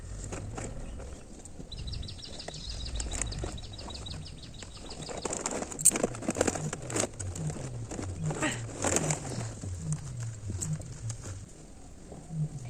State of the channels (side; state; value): both; identical; correlation 1.00